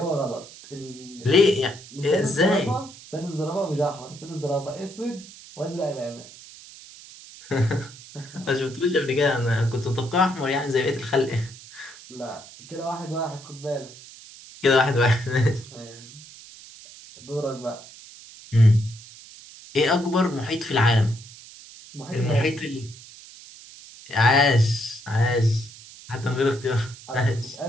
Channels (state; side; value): noise; right; hiss, 18 dB below the sound